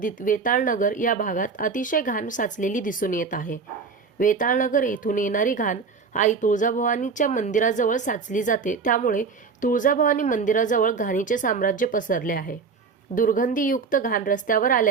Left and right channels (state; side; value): quieter; left; 5.1 dB